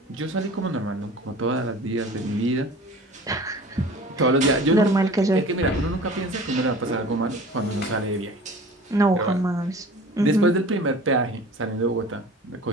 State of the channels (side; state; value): both; normal; correlation 0.42